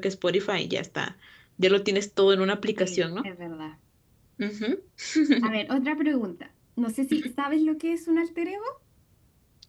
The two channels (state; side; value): identical; both; correlation 1.00